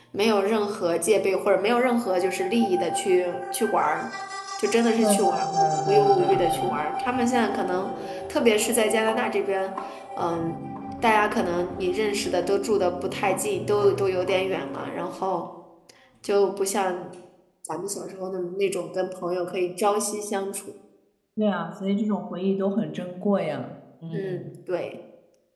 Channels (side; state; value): both; identical; correlation 1.00